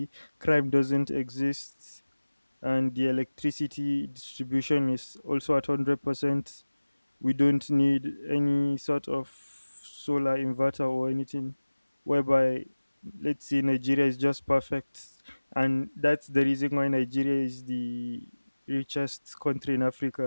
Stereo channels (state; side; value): inverted; both; correlation -1.00